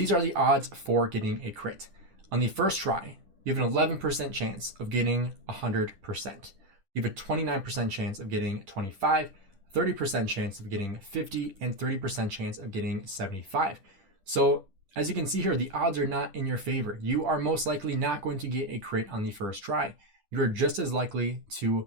are the odds for getting a crit. On the first try, you have an 11% chance of getting 100%. You have a 29% chance of getting 25, 30% chance of getting 50, and 30% chance of getting 75. So as you can see here, the odds are not in your favor. You are most likely not going to get a crit on the first try. You're just as likely to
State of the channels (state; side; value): late; left; 10 ms